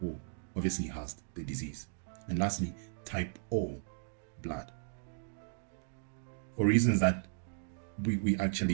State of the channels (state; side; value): silent; left; digital silence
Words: obviously has the disease. And lastly, type O blood. For reasons that we